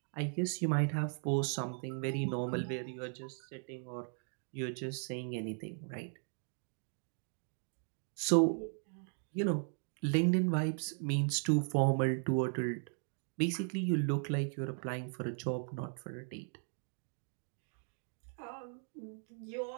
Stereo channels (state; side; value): silent; left; 53 dB below the other